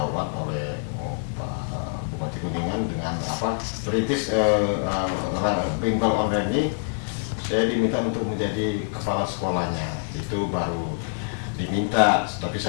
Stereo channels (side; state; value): right; silent; digital silence